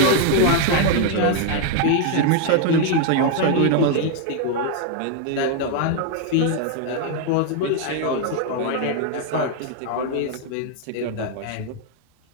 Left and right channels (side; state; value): both; different; correlation 0.00